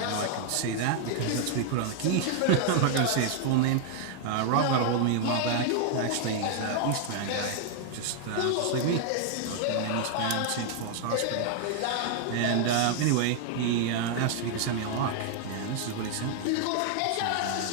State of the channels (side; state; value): both; different; correlation 0.00